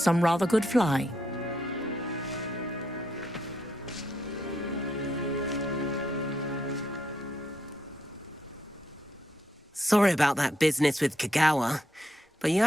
rather good flying. Sorry about that business with Kagawa, but you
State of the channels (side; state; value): both; normal; correlation 0.77